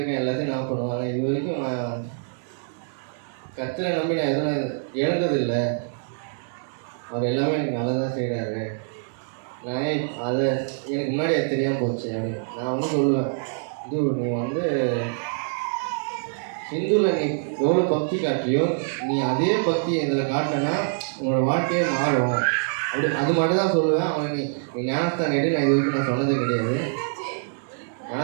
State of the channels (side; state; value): left; silent; digital silence